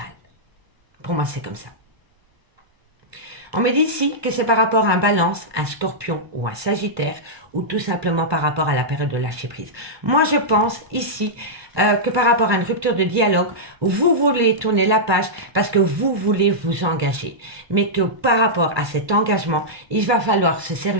Pour moi, c'est comme ça. On me dit ici que c'est par rapport à un balance, un scorpion ou un sagittaire, ou tout simplement par rapport à la période de lâcher prise. Moi, je pense ici que par rapport à une rupture de dialogue, vous voulez tourner la page parce que vous voulez vous engager. Mais que par rapport à cet engagement, il va falloir se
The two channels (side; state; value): left; late; 1.2 ms